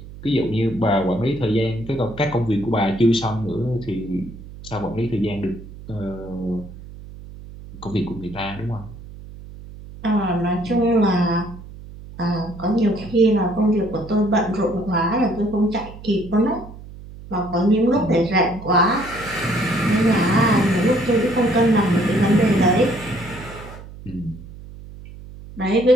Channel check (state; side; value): noise; right; hum, 16 dB below the sound